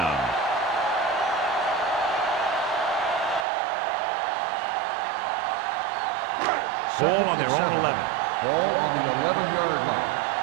Ball on their own 11. Ball on the 11-yard line.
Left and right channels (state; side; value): drops out; left; at 3.5 s